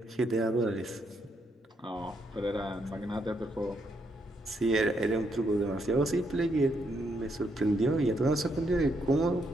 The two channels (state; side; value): normal; both; correlation 0.76